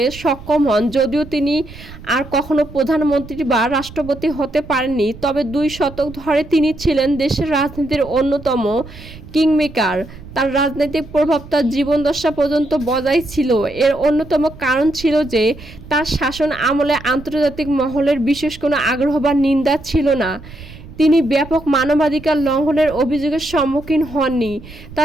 সক্ষম হন। যদিও তিনি আর কখনো প্রধানমন্ত্রী বা রাষ্ট্রপতি হতে পারেননি, তবে 2 দশক ধরে তিনি ছিলেন দেশের রাজনীতির অন্যতম কিংমেকার। তার রাজনৈতিক প্রভাব তার জীবদ্দশা পর্যন্ত বজায় ছিল। এর অন্যতম কারণ ছিল যে তার শাসন আমলে আন্তর্জাতিক মহলের বিশেষ কোনো আগ্রহ বা নিন্দা ছিল না। তিনি ব্যাপক মানবাধিকার লঙ্ঘনের অভিযোগের সম্মুখীন হননি।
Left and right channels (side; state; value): right; noise; rumble, 17 dB below the sound